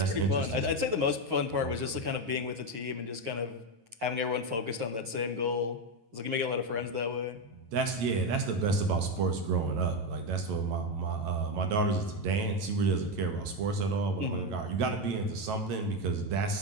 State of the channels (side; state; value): left; late; 8.7 ms